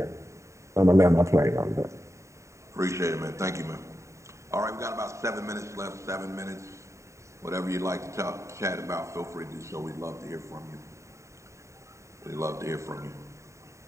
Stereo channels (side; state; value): left; late; 0.14 ms